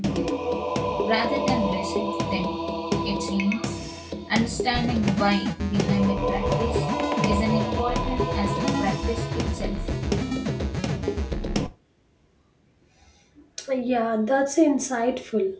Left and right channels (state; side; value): identical; both; correlation 1.00